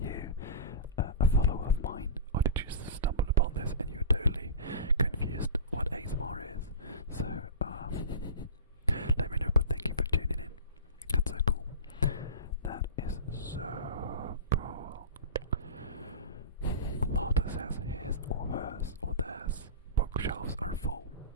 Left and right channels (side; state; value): both; inverted; correlation -0.31